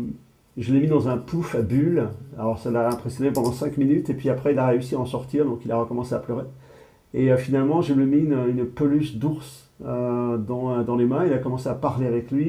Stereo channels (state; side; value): identical; both; correlation 1.00